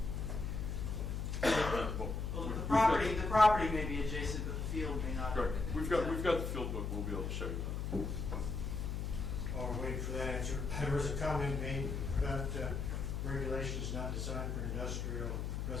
Well, The property may be adjacent, but the field may not. Correct. We've got the field book. We'll be able to show you that. While we're waiting for that answer, there was a comment made about regulations not designed for industrial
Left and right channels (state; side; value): noise; left; hum, 2 dB below the sound